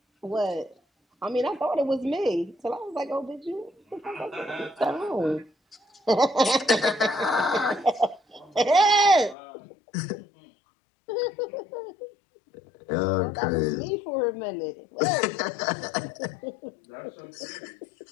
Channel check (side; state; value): right; drops out; at 9.3 s